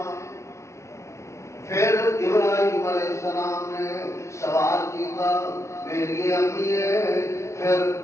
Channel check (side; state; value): right; late; 0.14 ms